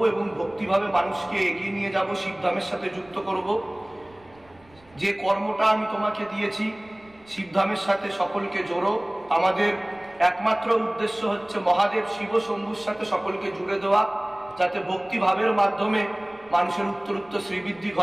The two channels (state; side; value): noise; right; rumble, 29 dB below the sound